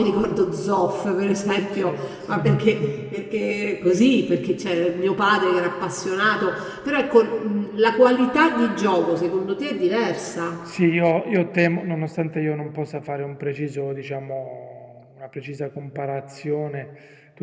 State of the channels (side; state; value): both; identical; correlation 1.00